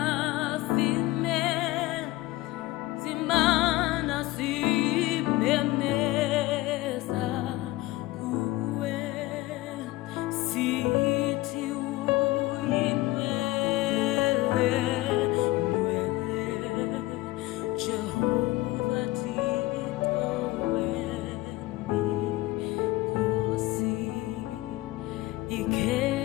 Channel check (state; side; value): quieter; right; 18.5 dB